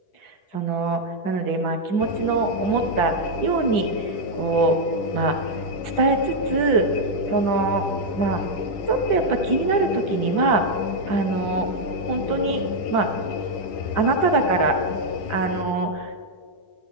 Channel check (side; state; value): right; late; 10 ms